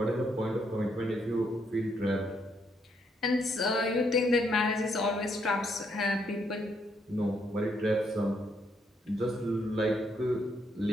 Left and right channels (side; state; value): both; normal; correlation 0.74